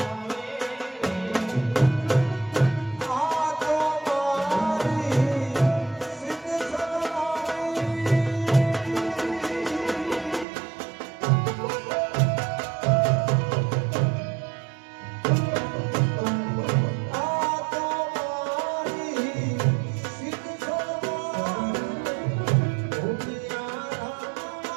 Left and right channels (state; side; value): drops out; left; at 10.5 s